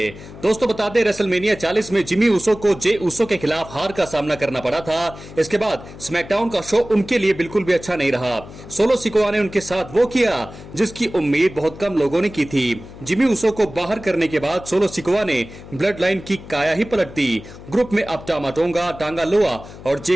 दोस्तों बता दें, रेसलमेनिया 40 में जिमी ऊसो को जे ऊसो के खिलाफ हार का सामना करना पड़ा था। इसके बाद स्मैकडाउन का शो उनके लिए बिल्कुल भी अच्छा नहीं रहा। सोलो सिकोआ ने उनके साथ वो किया जिसकी उम्मीद बहुत कम लोगों ने की थी। जिमी ऊसो को बाहर करने के बाद सोलो सिकोआ ने ब्लड लाइन की काया ही पलट दी। ग्रुप में अब टामा टोंगा, टांगा लोआ और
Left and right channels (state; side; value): noise; left; hum, 16 dB below the sound